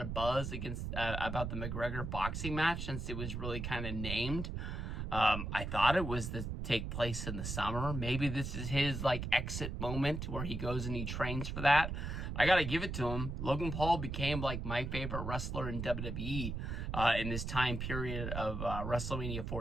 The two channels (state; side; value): noise; right; rumble, 4 dB below the sound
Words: of buzz about the McGregor boxing match since it was really kind of named. I thought it was to take place in the summer. Maybe this is his exit moment where he goes and he trains for that. I gotta give it to him. Logan Paul became my favorite wrestler in WWE in this time period of WrestleMania